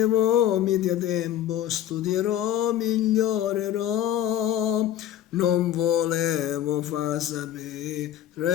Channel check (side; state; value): right; quieter; 11.6 dB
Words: mi dia tempo, studierò, migliorerò. Non volevo far